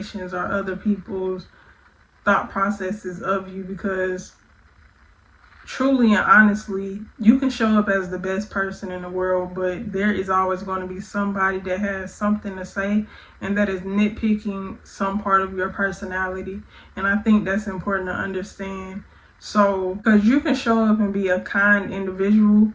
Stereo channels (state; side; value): identical; both; correlation 1.00